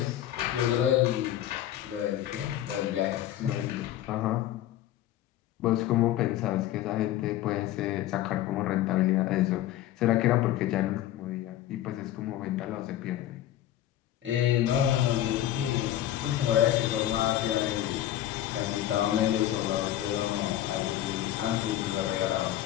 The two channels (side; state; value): right; quieter; 12.8 dB